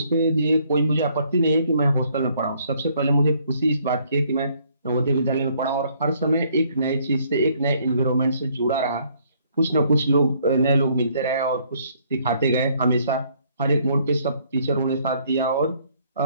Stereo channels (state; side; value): inverted; both; correlation -0.65